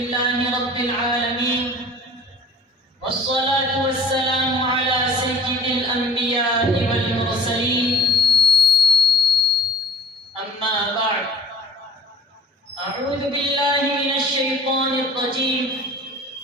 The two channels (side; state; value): both; normal; correlation 0.47